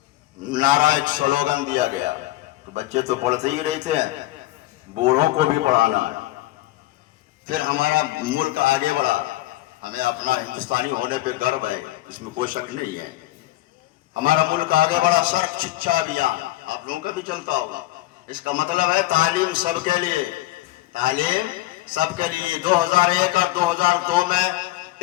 نعرہ ایک سلوگن دیا گیا کہ بچے تو پڑھتے ہی رہتے ہیں، بوڑھوں کو بھی پڑھانا ہے۔ پھر ہمارا ملک آگے بڑھا، ہمیں اپنا ہندوستانی ہونے پہ گرو ہے، اس میں کوئی شک نہیں ہے۔ ہمارا ملک آگے بڑھا، سرب شکشا ابھیان آپ لوگوں کا بھی چلتا ہوگا۔ اس کا مطلب ہے تعلیم سب کے لیے، تعلیم سب کے لیے۔ 2001 اور 2002 میں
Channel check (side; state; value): right; quieter; 17.0 dB